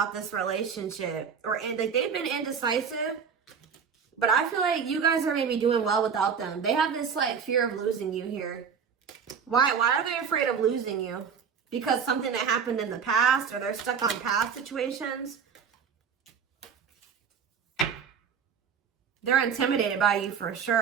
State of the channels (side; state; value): left; quieter; 6.7 dB